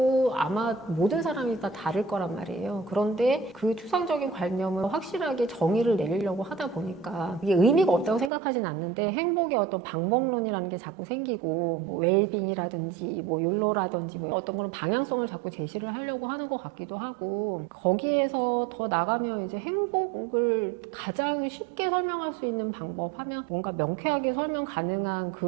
아마 모든 사람이 다 다를 거란 말이에요. 그런데 그 추상적인 관념을 확실하게 정의를 내리려고 하다 보니까 이게 의미가 없다고 생각하진 않는데, 행복의 어떤 방법론이라는 게 자꾸 생기고, 뭐 웰빙이라든지 뭐 욜로라든지 뭐 어떤 그런 방향성을 자꾸 제시를 하려고 하는 것 같기도 하고, 거기에서 더 나가면 이제 행복을 가장 쉽게 설명할 수 있는 방법 하면 뭔가 명쾌하게 설명 가능한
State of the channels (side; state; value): left; drops out; at 8.3 s